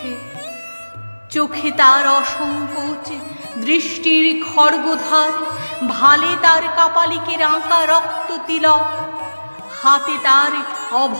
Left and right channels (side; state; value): both; inverted; correlation -1.00